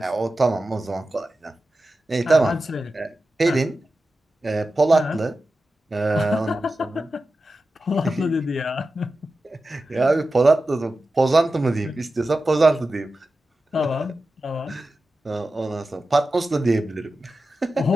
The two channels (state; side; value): normal; both; correlation 0.93